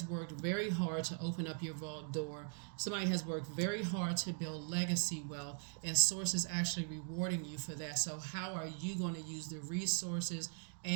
worked very hard to open up your vault door. Somebody has worked very hard to build legacy wealth, and source is actually rewarding you for that. So how are you going to use the resources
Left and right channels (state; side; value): silent; left; 51 dB below the other